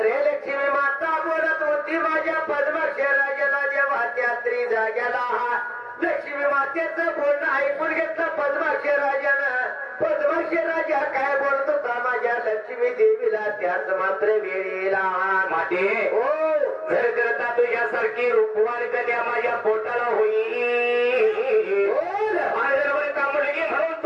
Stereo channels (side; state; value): both; identical; correlation 1.00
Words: लक्ष्मी माता बोलत होती माझ्या पद्माक्ष राजाला जेव्हा त्यात्री जाग्याला लक्ष्मी मातेचं बोलणं ऐकून घेतलं पद्माक्ष राजानं पद्माक्ष राजा काय बोलत होता माझ्या लक्ष्मी देवीला त्याच मात्र वेळेला माते हो जर करता तुझ्यासारखी रूपवान कन्या माझ्या पोटाला होईल बरोबर का मुलगी म्हणून